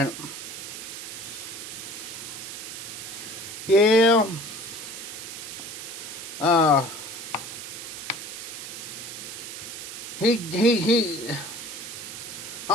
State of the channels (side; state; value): right; noise; hiss, 8 dB below the sound